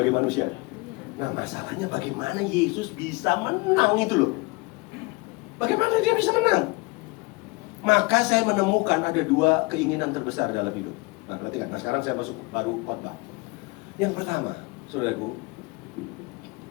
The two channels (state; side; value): quieter; right; 25.9 dB